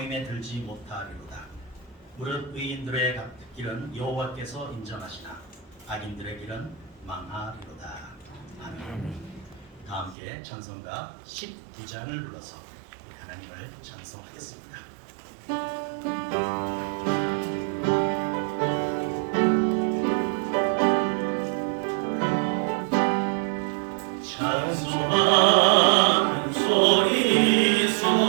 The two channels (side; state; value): left; drops out; at 10.2 s